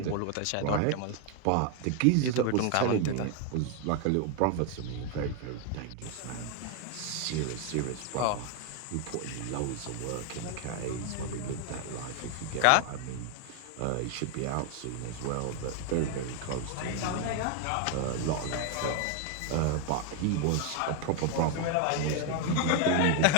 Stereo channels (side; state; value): both; different; correlation 0.01